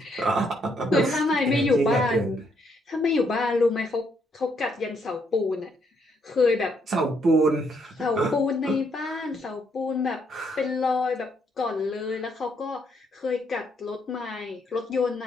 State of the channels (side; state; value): both; normal; correlation 0.73